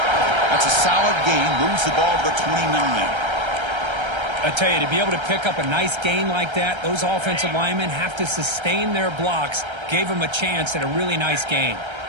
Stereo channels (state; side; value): late; left; 1.3 ms